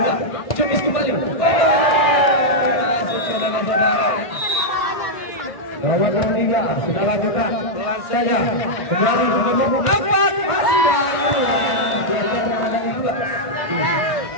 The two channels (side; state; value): right; late; 1.5 ms